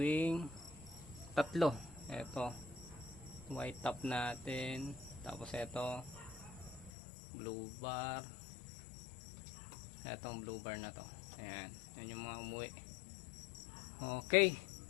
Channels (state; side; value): drops out; right; at 6.9 s